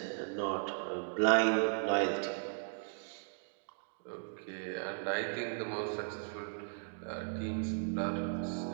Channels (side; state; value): left; silent; digital silence